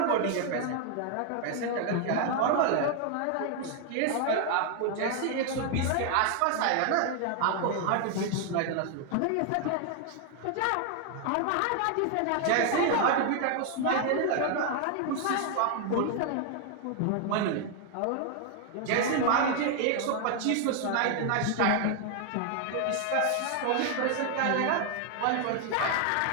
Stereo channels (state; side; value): different; both; correlation 0.00